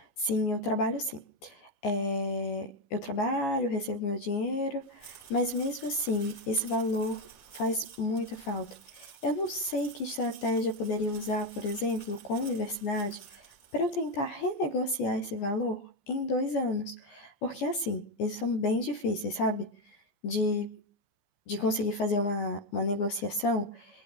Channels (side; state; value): right; late; 14 ms